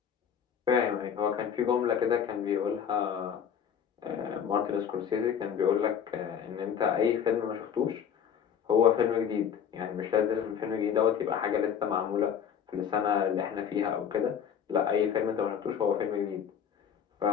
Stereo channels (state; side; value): quieter; right; 8.1 dB